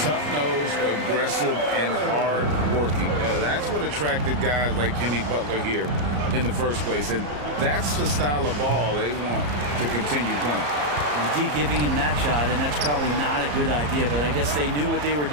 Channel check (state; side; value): late; left; 34 ms